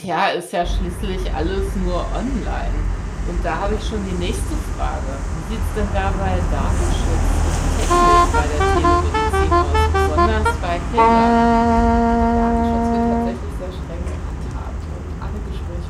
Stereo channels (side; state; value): both; identical; correlation 1.00